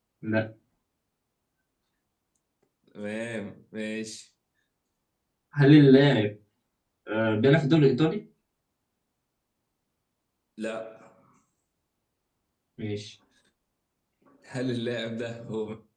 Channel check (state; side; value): identical; both; correlation 1.00